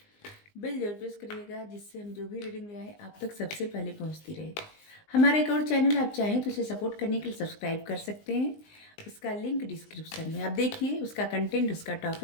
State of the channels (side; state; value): right; late; 19 ms